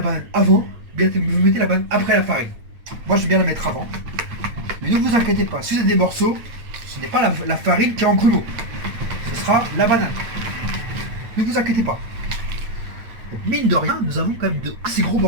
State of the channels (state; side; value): late; left; 8.7 ms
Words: banane avant, ou bien vous mettez la banane après la farine. Moi, je vais bien la mettre avant. Mais ne vous inquiétez pas, si vous avez des morceaux, ce n'est pas la farine qui est en grumeau. Ce sera la banane. Ne vous inquiétez pas. Donc, mine de rien, nous avons quand même de assez gros